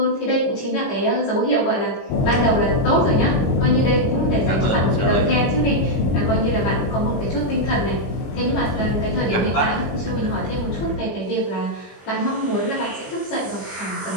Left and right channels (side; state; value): right; late; 21 ms